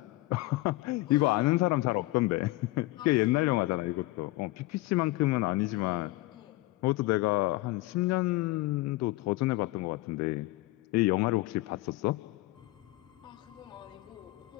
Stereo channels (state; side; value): quieter; right; 19.8 dB